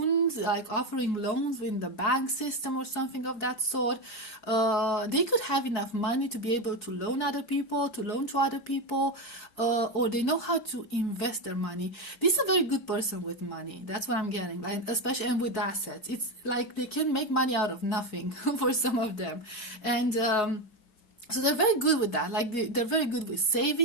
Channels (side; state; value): right; late; 4.7 ms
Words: like offering loans in the bank system or something of that sort. They could have enough money to be able to loan to other people, or they know how to invest their money. This is a very good person with money. That's what I'm getting, especially, and with assets. It's like they can make money out of nothing for some of them. And so they're very good with that. They're very good with